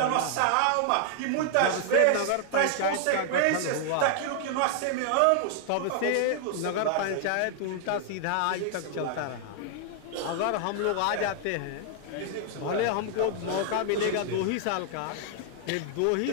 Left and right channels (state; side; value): different; both; correlation 0.00